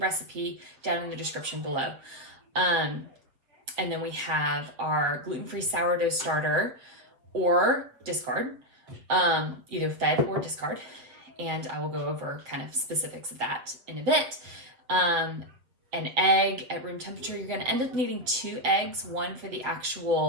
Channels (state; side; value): late; left; 7.7 ms